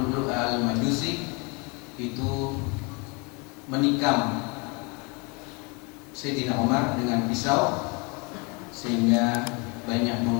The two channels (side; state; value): right; quieter; 30.3 dB